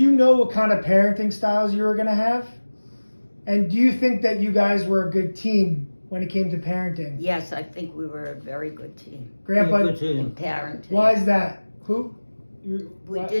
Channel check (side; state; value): both; inverted; correlation -1.00